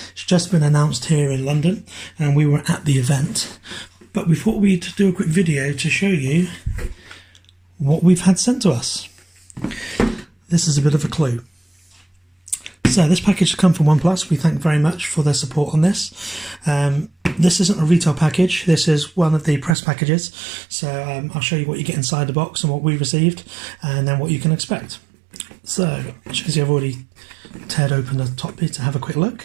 It's just been announced here in London and we were at the event, but we thought we'd do a quick video to show you what we've had sent to us. This is a bit of a clue. So this package has come from OnePlus. We thank very much for their support on this. This isn't a retail package, this is one of the press packages. So I'll show you what you get inside the box and what we received, and then what you can expect. So, as you can see, I've already teared open the top bit to have a quick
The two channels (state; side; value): drops out; left; at 19.8 s